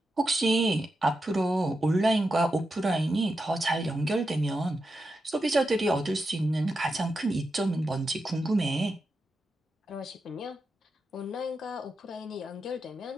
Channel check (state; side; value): normal; both; correlation 0.88